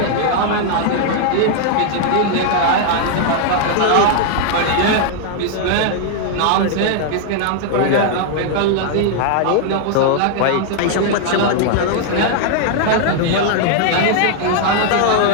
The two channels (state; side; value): different; both; correlation 0.00